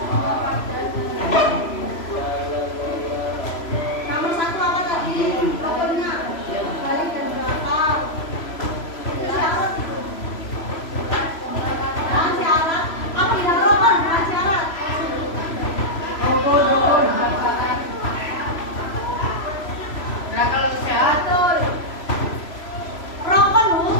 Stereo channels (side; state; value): right; late; 3.0 ms